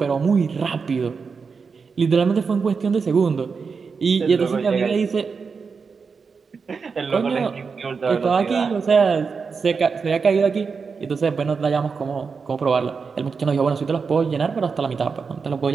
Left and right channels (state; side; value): quieter; left; 5.3 dB